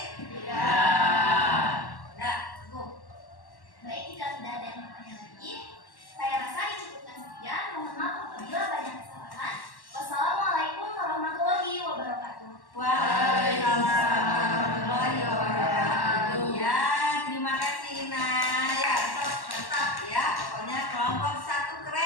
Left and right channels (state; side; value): late; right; 1.1 ms